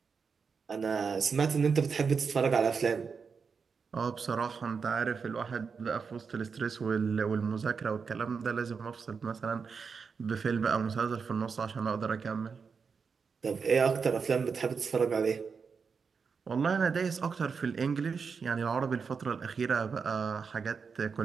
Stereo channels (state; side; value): quieter; left; 5.6 dB